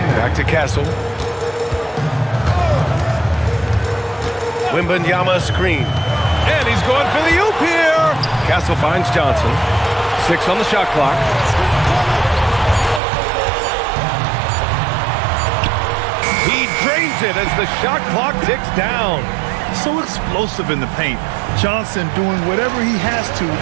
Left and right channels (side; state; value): left; drops out; at 13.0 s